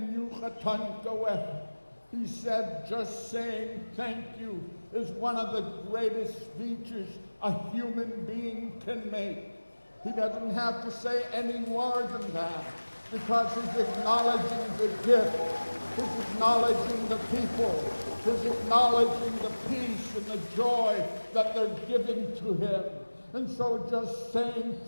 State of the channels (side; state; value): both; inverted; correlation -1.00